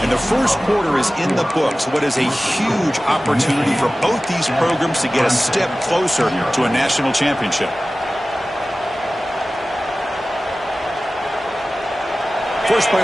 And the first quarter is in the books. What is a huge opportunity for both these programs to get a step closer to a national championship. First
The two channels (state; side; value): normal; both; correlation 0.96